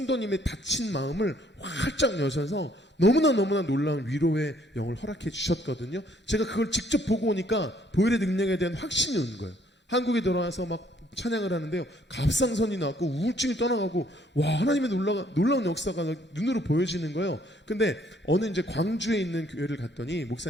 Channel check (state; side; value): normal; both; correlation 0.64